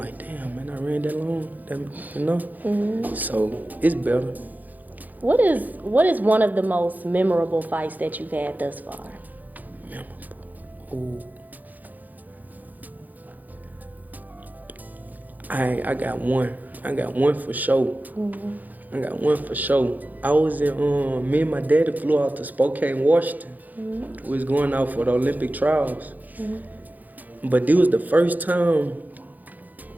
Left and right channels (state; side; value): late; left; 0.082 ms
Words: damn, man, I ran that long, you know? So it's better. What is one of the most memorable fights that you've had thus far? Memorable. Ooh. I got one. I got one for sure. I got one for sure. I was in, me and my daddy flew out to Spokane, Washington. We was going out for the Olympic trials. But this was the first time